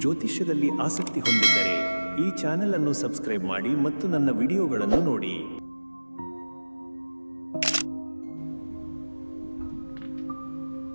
ಜ್ಯೋತಿಷ್ಯದಲ್ಲಿ ಆಸಕ್ತಿ ಹೊಂದಿದ್ದರೆ ಈ ಚಾನೆಲ್ ಅನ್ನು ಸಬ್ಸ್ಕ್ರೈಬ್ ಮಾಡಿ ಮತ್ತು ನನ್ನ ವಿಡಿಯೋಗಳನ್ನು ನೋಡಿ.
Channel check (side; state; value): both; inverted; correlation -1.00